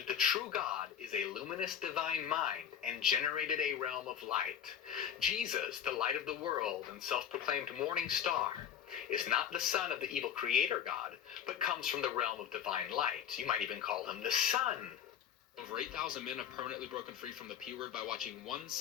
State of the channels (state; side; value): quieter; right; 8.9 dB